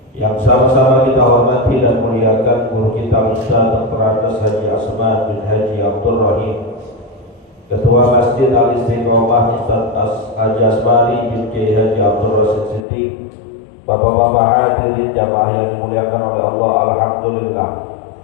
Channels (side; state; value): right; drops out; at 12.8 s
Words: Yang sama-sama kita hormati dan muliakan guru kita Ustaz Dr. Andes Haji Asman bin Haji Abdul Rahim, Ketua Masjid Al-Istiqomah Ustaz Haji Asmari bin Kiai Haji Abdul Rasid Siddiq, Bapak-bapak hadirin jamaah yang dimuliakan oleh Allah, alhamdulillah.